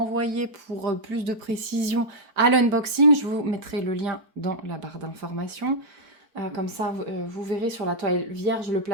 pour plus de précision à l'unboxing. Je vous mettrai le lien dans la barre d'informations. Comme ça, vous verrez sur la toile vierge le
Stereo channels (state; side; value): late; left; 4.5 ms